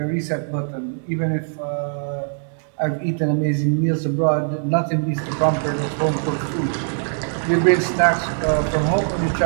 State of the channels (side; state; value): left; silent; digital silence